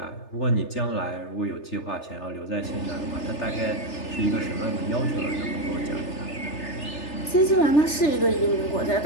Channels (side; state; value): right; late; 3.3 ms